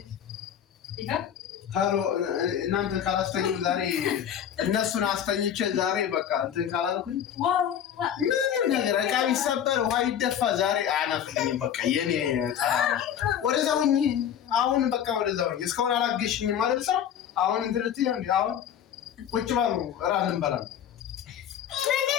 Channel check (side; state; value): right; quieter; 9.4 dB